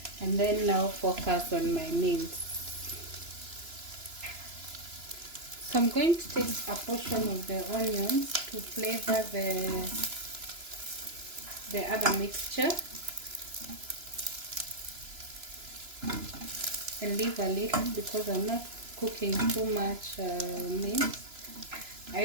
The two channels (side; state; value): left; late; 2.9 ms